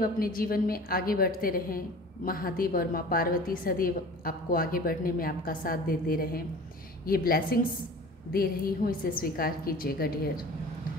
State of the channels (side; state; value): both; normal; correlation 0.41